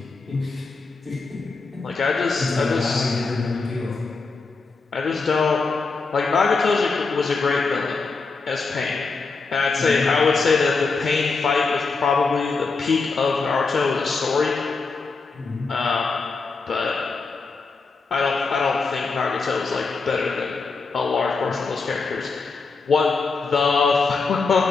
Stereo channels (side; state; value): right; quieter; 4.3 dB